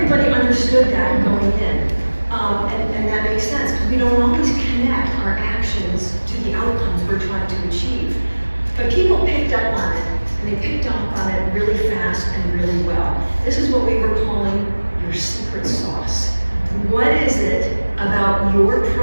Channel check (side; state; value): both; inverted; correlation -1.00